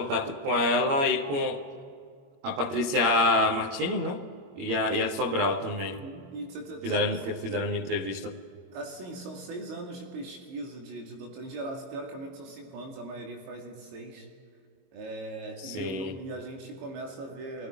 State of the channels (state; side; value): late; left; 22 ms